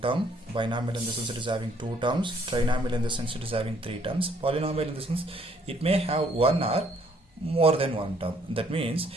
term, binomial in the sense it is having two terms, trinomial in the sense it is having three terms, polynomial in the sense it may have one or more than one term. That means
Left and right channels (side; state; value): both; normal; correlation 0.65